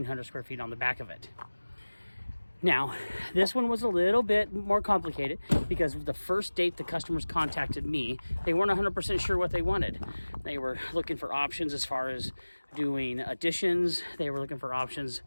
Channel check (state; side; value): inverted; both; correlation -1.00